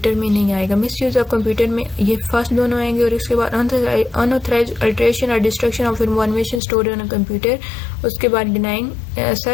में नहीं आएगा। मिस यूज़ ऑफ कंप्यूटर में ये फर्स्ट दोनों आएंगे, और उसके बाद अनऑथराइज्ड अल्टरेशन और destruction of information stored on a computer, उसके बाद denying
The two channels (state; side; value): drops out; right; at 6.6 s